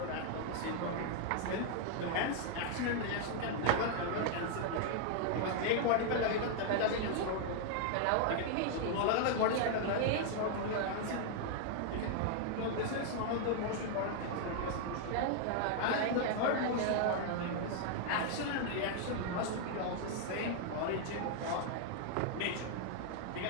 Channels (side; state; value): both; different; correlation 0.00